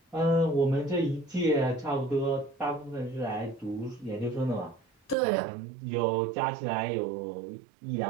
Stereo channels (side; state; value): left; drops out; at 5.2 s